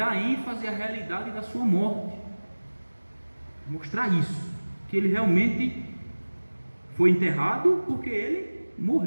ênfase à realidade da sua morte, mostrar isso, que ele realmente foi enterrado porque ele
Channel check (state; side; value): inverted; both; correlation -1.00